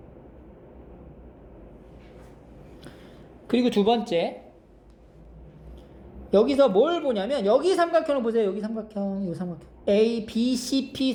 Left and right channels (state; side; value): identical; both; correlation 1.00